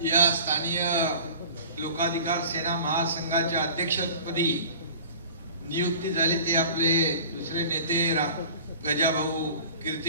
या स्थानीय लोकाधिकार सेना महासंघाच्या अध्यक्षपदी नियुक्ती झाली, ते आपले दुसरे नेते गजाभाऊ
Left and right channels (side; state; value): both; inverted; correlation -0.42